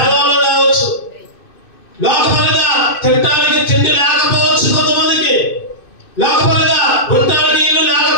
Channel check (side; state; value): right; late; 2.6 ms